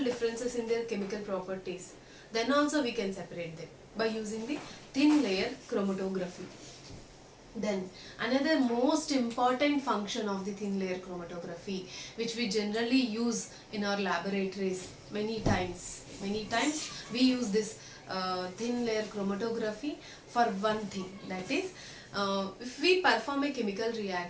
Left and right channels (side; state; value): both; identical; correlation 1.00